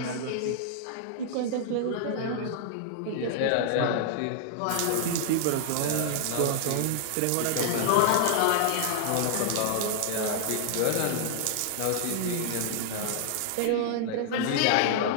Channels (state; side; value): different; both; correlation 0.00